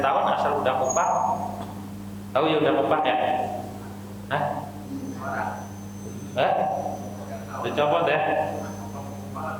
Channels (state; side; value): identical; both; correlation 1.00